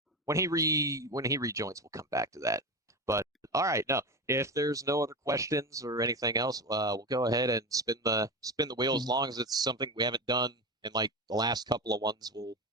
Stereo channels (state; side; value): normal; both; correlation 0.22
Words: when he rejoins. We'll come back to that. But all right, no. If there's no other questions or anything else, we'll go ahead and spin the wheel. As long as it's something we haven't done in like the last couple of ones, we'll